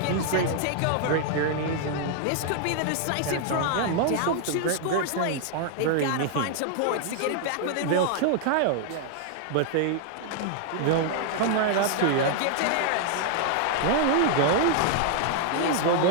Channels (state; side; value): different; both; correlation 0.00